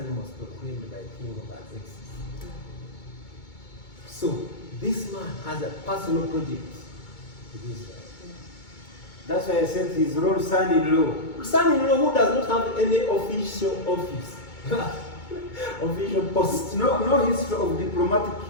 was proclaimed by King Artaxerxes. So, this man has a personal project with Israel. That's why I said his own son-in-law. Son-in-law who does not have any official office, official post. No history of diplomatic.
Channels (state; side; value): late; right; 2.2 ms